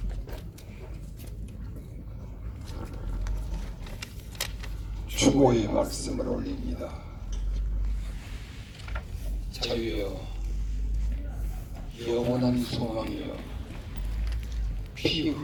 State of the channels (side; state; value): both; identical; correlation 1.00